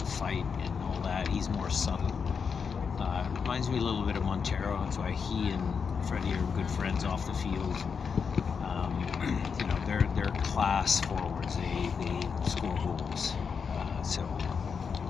fight and all that. He's more subtle. Reminds me a little bit of Montero. That's why he and Freddie are good friends off the field. They're class forwards. They score goals. So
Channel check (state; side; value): quieter; right; 6.0 dB